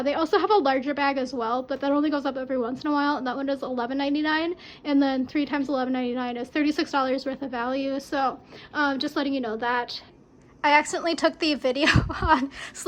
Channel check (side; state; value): both; identical; correlation 1.00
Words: they also have a larger bag as well, but that only goes up every once in a while. And that one is $11.99, and then 3 times $11.99 is $36 worth of value. So just letting you know that. I accidentally took the video on